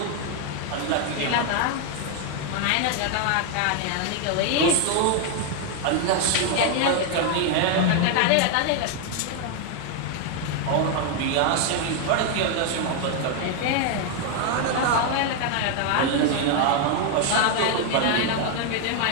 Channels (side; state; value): both; different; correlation 0.01